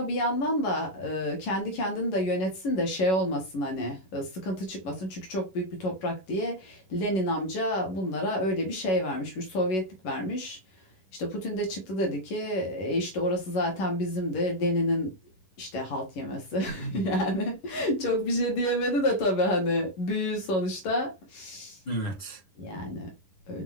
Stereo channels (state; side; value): late; right; 11 ms